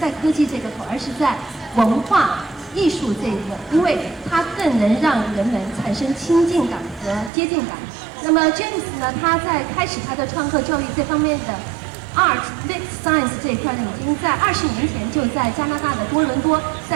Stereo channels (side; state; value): left; drops out; at 7.3 s